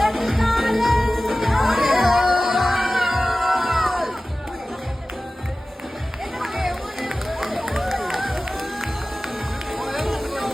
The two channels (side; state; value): both; normal; correlation 0.96